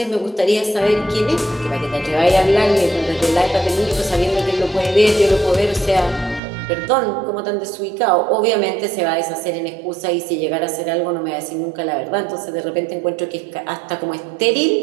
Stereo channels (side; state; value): left; drops out; at 6.4 s